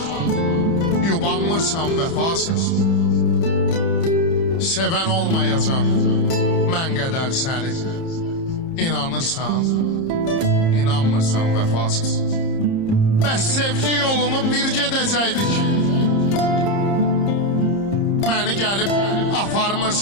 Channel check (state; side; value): late; right; 30 ms